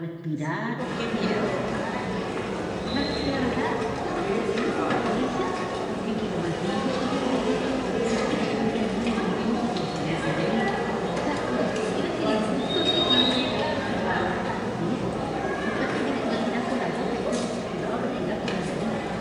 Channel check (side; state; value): both; identical; correlation 1.00